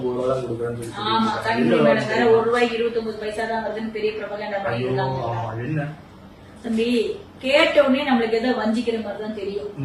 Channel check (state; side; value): identical; both; correlation 1.00